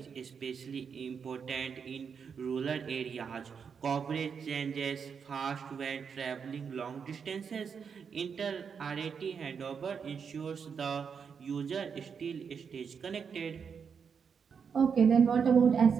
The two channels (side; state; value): left; quieter; 6.5 dB